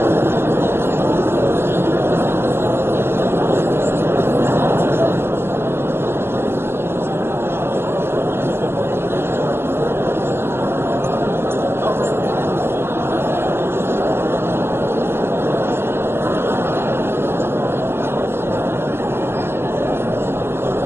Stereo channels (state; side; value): late; left; 0.12 ms